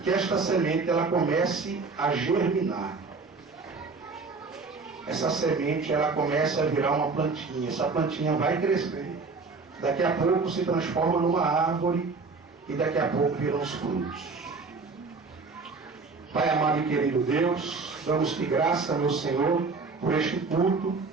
esta semente ela comece a germinar. Essa semente ela comece a virar uma plantinha. Essa plantinha vai crescer. Daqui a pouco se transforma numa árvore e daqui a pouco viram os frutos. Pai amado e querido Deus, damos-te graça, meu Senhor, por este culto.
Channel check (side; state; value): left; quieter; 4.3 dB